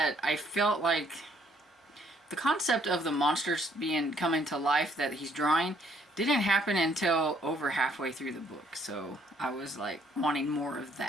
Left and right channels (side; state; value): both; normal; correlation 0.65